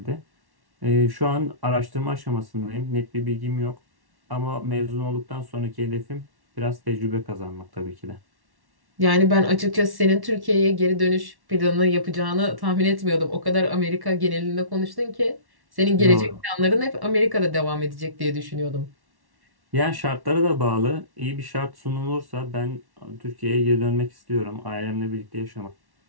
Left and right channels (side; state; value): left; late; 1.1 ms